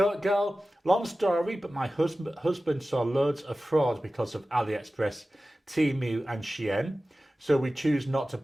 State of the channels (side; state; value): both; normal; correlation 0.95